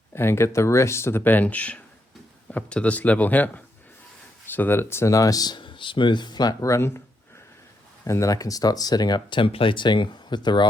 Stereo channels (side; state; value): both; normal; correlation 0.80